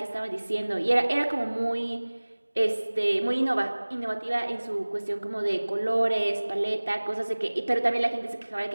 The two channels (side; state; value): both; inverted; correlation -1.00